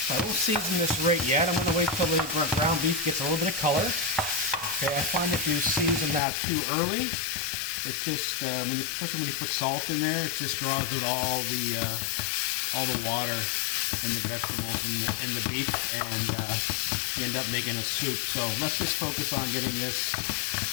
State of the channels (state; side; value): drops out; right; at 6.2 s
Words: So I won't season this right yet. I'm going to wait till the ground beef gets a little bit of color. Okay, I find if you season that too early, it's just especially when you put salt in there, it just draws out all the water in the vegetables and the beef, and you end up making a soup. So let's just focus on get